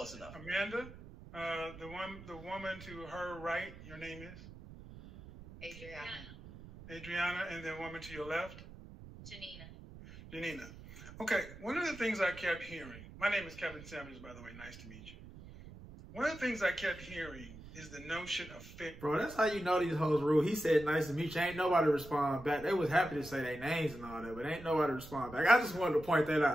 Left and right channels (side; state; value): right; noise; rumble, 16 dB below the sound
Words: enough. Amanda, the woman to her right. Your name is Adriana, and the woman to your left, Janina. Okay. One of the things I kept hearing. My name is Kevin Samuels, by the way. Nice to meet you. One of the things I kept hearing is the notion of fit. Bro, that's how you know these hoes rule. He said, nice to meet you. Ain't nobody respond back. They was happy to say their names and all that, but ain't nobody respond back. I just wanted to point that